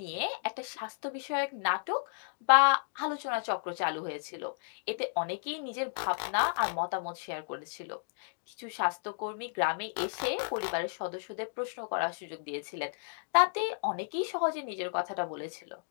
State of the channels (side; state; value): right; silent; digital silence